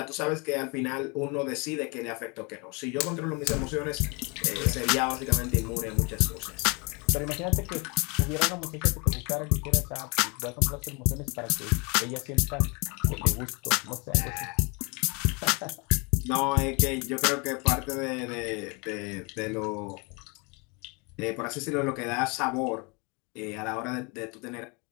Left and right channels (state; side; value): quieter; right; 30.3 dB